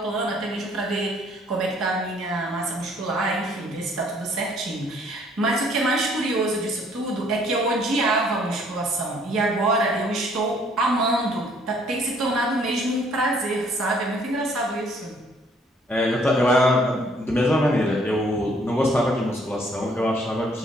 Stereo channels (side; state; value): both; normal; correlation 0.62